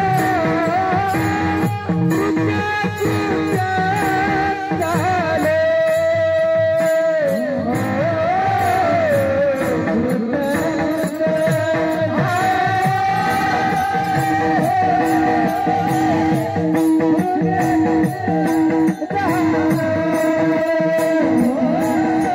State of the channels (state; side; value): identical; both; correlation 1.00